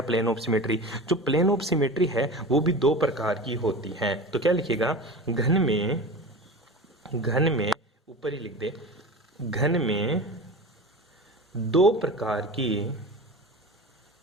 प्लेन ऑफ सिमेट्री। जो प्लेन ऑफ सिमेट्री है वो भी दो प्रकार की होती हैं। तो क्या लिखेगा? घन में ऊपर ही लिख दे, घन में दो प्रकार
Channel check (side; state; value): both; normal; correlation 0.32